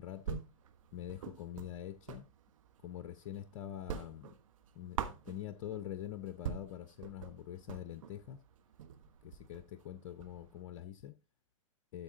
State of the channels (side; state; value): both; normal; correlation -0.10